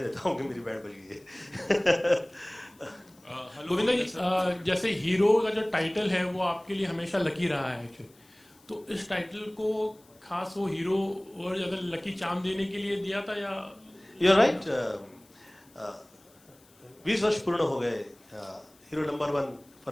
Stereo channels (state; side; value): noise; left; hiss, 29 dB below the sound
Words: देता हूँ कि मेरी बैंड बज गई है। गोविंदा जी, जैसे हीरो का जो टाइटल है वो आपके लिए हमेशा लकी रहा है एक्चुअली, तो इस टाइटल को खास वो हीरो और अगर लकी चार्म देने के लिए दिया था या? You're right, 20 वर्ष पूर्ण हो गए हीरो नंबर 1